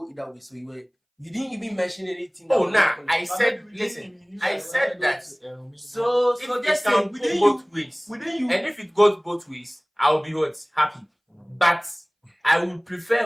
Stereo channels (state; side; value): identical; both; correlation 1.00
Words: either way. So you didn't even mention anything. Oh, nah, I said, listen, I said that. So If just it say, can go both ways, within you, and if it goes both ways, I'll be what? Happy. But I would prefer